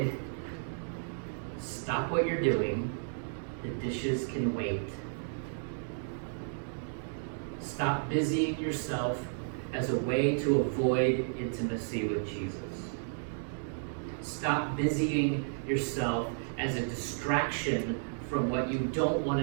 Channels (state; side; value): silent; left; digital silence